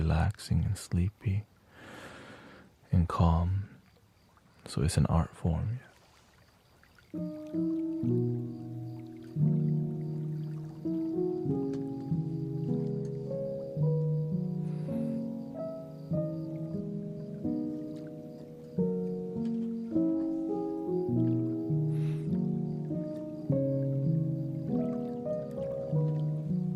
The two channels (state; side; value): identical; both; correlation 1.00